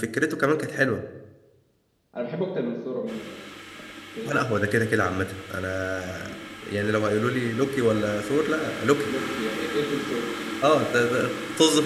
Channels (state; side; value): identical; both; correlation 1.00